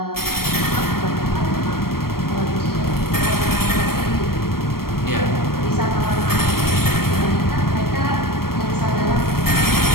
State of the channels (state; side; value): late; right; 0.94 ms